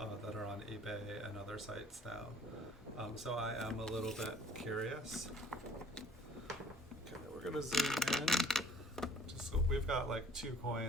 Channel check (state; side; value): normal; both; correlation 0.55